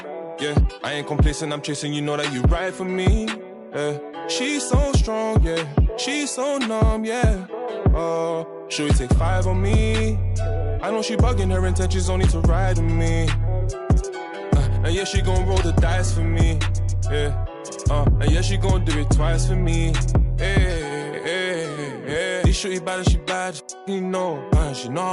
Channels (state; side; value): identical; both; correlation 1.00